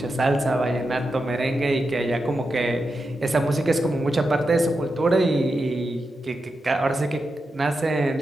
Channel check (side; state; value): both; normal; correlation 0.88